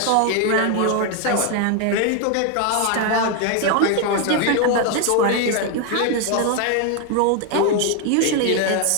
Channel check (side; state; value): both; different; correlation 0.01